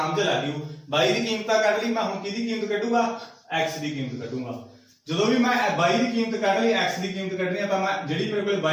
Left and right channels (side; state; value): both; identical; correlation 1.00